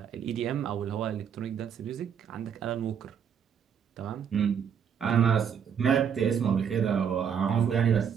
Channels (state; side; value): quieter; left; 7.7 dB